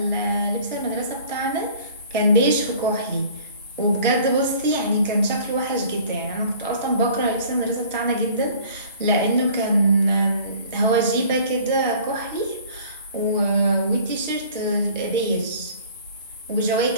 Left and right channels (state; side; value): inverted; both; correlation -0.49